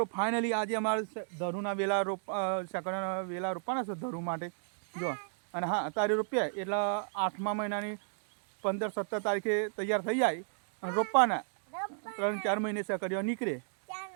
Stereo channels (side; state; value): left; silent; digital silence